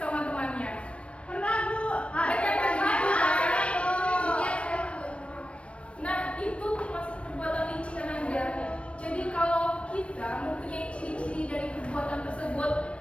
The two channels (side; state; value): right; late; 0.061 ms